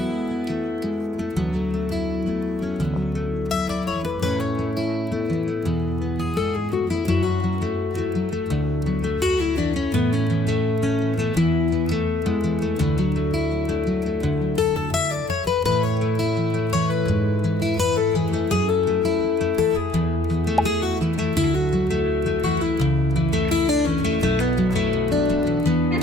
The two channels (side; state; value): both; normal; correlation 0.65